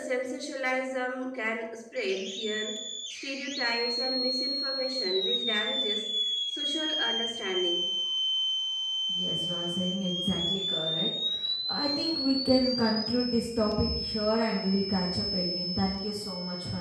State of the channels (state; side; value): identical; both; correlation 1.00